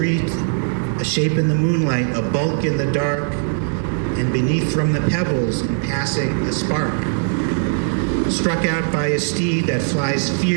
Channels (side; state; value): left; silent; 58 dB below the other